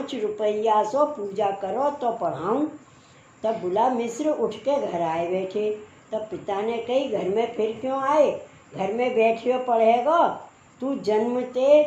रुपया सो पूजा करो तो पढ़ाऊँ। तब बुला मिश्र उठ के घर आए बैठे। तब पिता ने कही, घर में फिर क्यों आए, घर में बैठियो पढ़ेगा, तू जन्मते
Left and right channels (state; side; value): identical; both; correlation 1.00